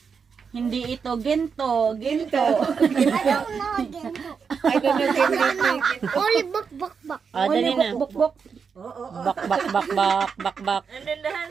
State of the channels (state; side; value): quieter; left; 6.0 dB